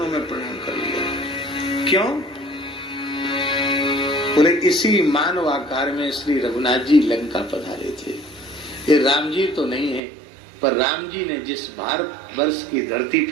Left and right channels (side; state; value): left; drops out; at 10.0 s